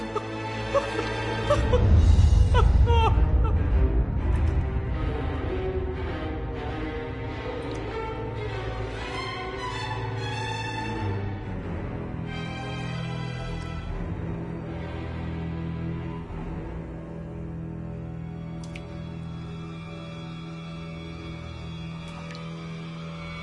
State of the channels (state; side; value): identical; both; correlation 1.00